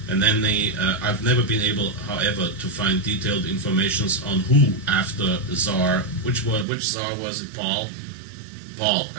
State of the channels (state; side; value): drops out; left; at 6.7 s